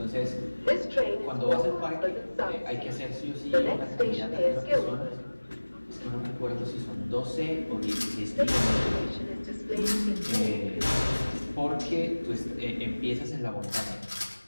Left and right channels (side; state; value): both; inverted; correlation -1.00